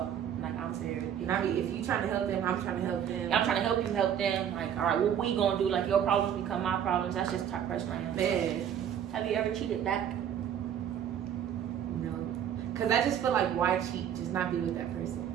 like, I'm very. And I mean, if you trying to help them, I'm trying to help them. I'm trying to help you help them. Like, all right, what we gonna do? Like, your problems become my problems. That's just the type of person I am. Man. Have you ever cheated back? No. Because I just feel like, why cheat? Just not be with that person.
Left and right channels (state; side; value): quieter; left; 9.3 dB